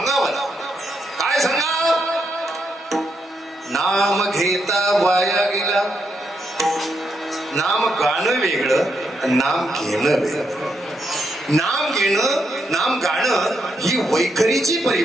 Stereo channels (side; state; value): both; normal; correlation 0.80